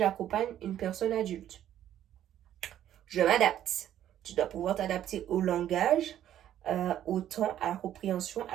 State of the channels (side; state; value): left; quieter; 11.3 dB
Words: une personne adulte. Je m'adapte. Tu dois pouvoir t'adapter au langage, au temps, à la compréhension,